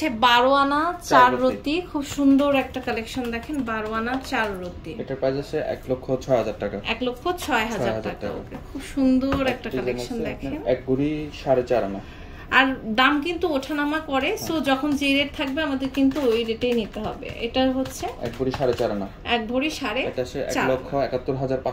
12 আনা 4 রতি। খুব সুন্দর একটা কালেকশন দেখেন, 12 আনা 4 রতি। এটার প্রাইস আছে 1,06,000 টাকা। 1,06,000 টাকা। ওকে, খুব সুন্দর একটা কালেকশন দেখেন। এক ভরি 4.5 আনা। আর দাম কিন্তু ওঠানামা করে, সো যখন যে রেট থাকবে আমাদের কিন্তু ওই রেটেই নিতে হবে। এটা হচ্ছে এক ভরি 4.5 আনা। এক ভরি 4.5। এটা আছে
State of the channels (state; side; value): identical; both; correlation 1.00